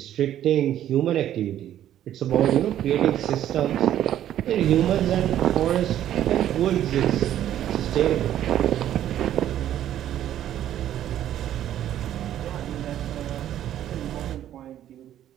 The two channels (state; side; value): quieter; left; 11.6 dB